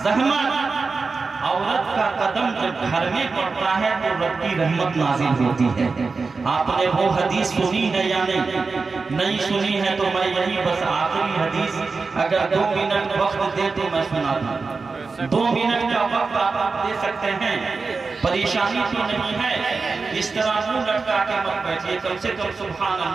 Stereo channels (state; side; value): quieter; left; 4.3 dB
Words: زحمت. عورت کا قدم جب گھر میں پڑتا ہے تو رب کی رحمت نازل ہوتی ہے. آپ نے وہ حدیث سنی ہے یا نہیں سنی ہے تو میں یہی بس آخری حدیث اگر 2 منٹ وقت دے تو میں سنا دوں. 2 منٹ کا وقت آپ دے سکتے ہیں؟ پریشانی تو نہیں ہے؟ اس طرح منہ لٹکا کے مت بیٹھیے، کم سے کم سبحان